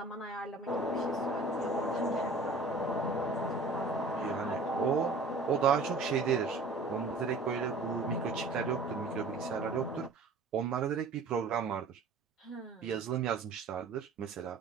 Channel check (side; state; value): left; quieter; 3.4 dB